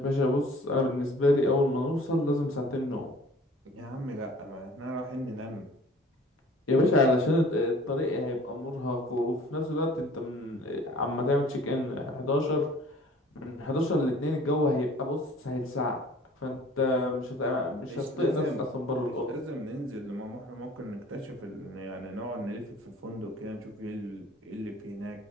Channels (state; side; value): normal; both; correlation 0.50